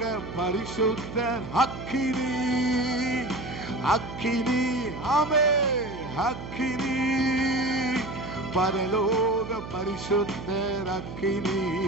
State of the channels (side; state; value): right; noise; hum, 10 dB below the sound